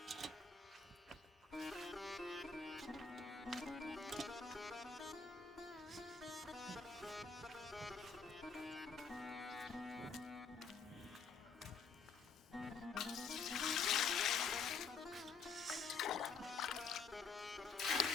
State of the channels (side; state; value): right; quieter; 5.2 dB